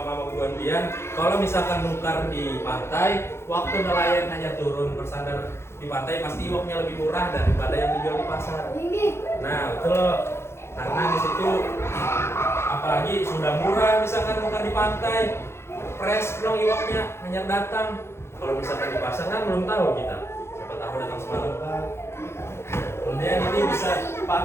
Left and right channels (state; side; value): late; right; 0.12 ms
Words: buan bian. Kalau misalkan nukar di pantai, waktu nelayan hanya turun bersandar di pantai, pasti uangnya lebih murah daripada yang dijual di pasar. Nah betul, karena di situ apalagi sudah murah misalkan nukar di pantai, fresh dong iwaknya hanya datang. Kalau misalkan di pasar kan belum tahu kita, siapa tahu datang semalam kan. Kemudian ini bisa,